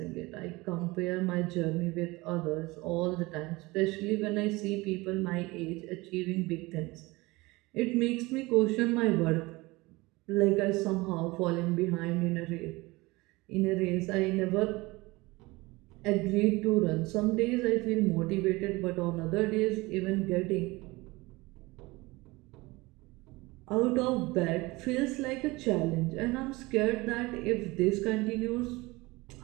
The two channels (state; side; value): quieter; left; 22.3 dB